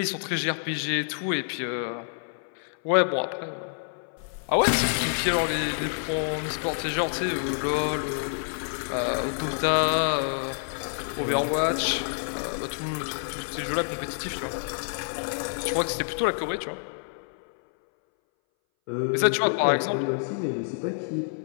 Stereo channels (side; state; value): right; silent; 60 dB below the other